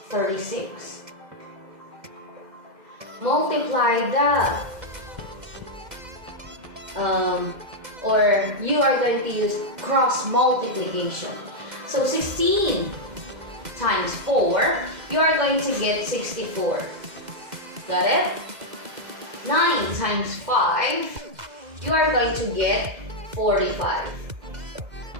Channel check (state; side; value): late; left; 2.0 ms